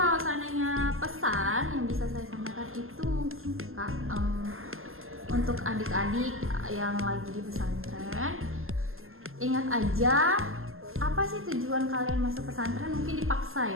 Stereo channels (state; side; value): late; left; 0.61 ms